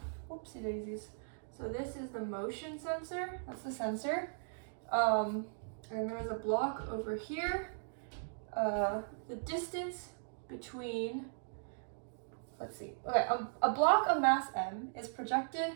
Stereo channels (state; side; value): silent; left; digital silence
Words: whoopsie daisies. So this is the motion sensor. That's the sensor. And there's a block over here. The distance between, let's see, okay, a block of mass m is projected